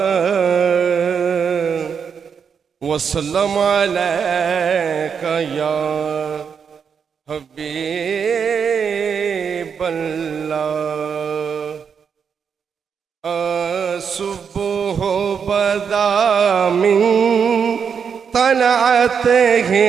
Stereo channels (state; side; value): quieter; left; 6.7 dB